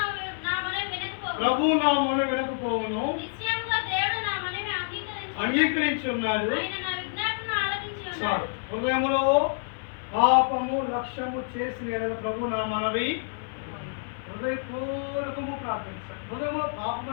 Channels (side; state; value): right; silent; 56 dB below the other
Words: ప్రభు నా మొన వినకపోవును, అంగీకరించి ఉన్నాడు. హృదయములో పాపము లక్ష్యము చేసిన ఎడల ప్రభు నా మనవి హృదయపూర్వకము ప్రార్థించాడు. హృదయంలో పాపం